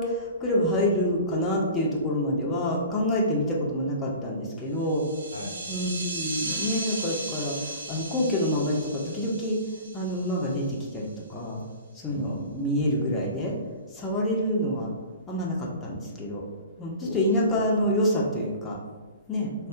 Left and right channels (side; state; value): both; inverted; correlation -0.38